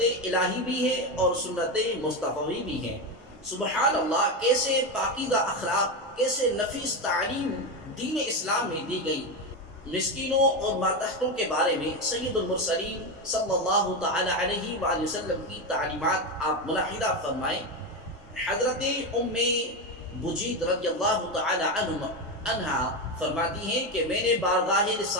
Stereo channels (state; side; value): normal; both; correlation 0.14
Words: الہی بھی ہے اور سنت مصطفی بھی ہے۔ سبحان اللہ، کیسے پاکیزہ اخلاق، کیسے نفیس تعلیم دین اسلام میں دی گئی۔ مسکینوں اور ماتحتوں کے بارے میں سید المرسلین صلی اللہ تعالی علیہ وآلہ وسلم کی تعلیمات آپ ملاحظہ فرمائیں۔ حضرت ام بجید رضی اللہ تعالی عنہا فرماتی ہیں کہ میں نے بارگاہ